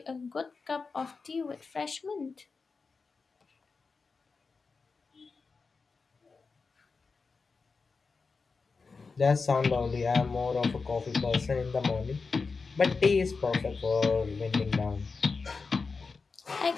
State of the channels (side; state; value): right; quieter; 4.5 dB